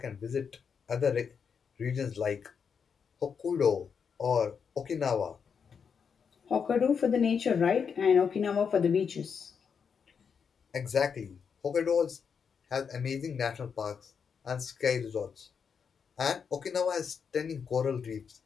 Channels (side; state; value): right; quieter; 6.5 dB